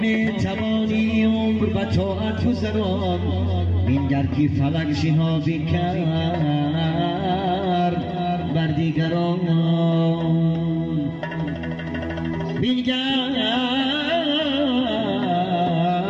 توانی عمر و طاعت گذران بینگر که فلک شهابی کرد بر دیگران بینگر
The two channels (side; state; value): both; identical; correlation 1.00